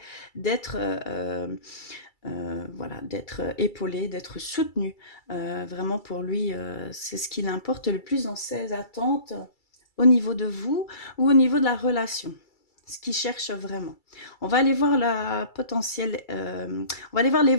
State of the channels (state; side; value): late; right; 2.3 ms